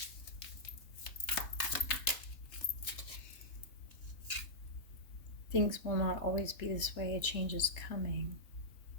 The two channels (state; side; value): late; right; 3.3 ms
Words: Things will not always be this way. A change is coming.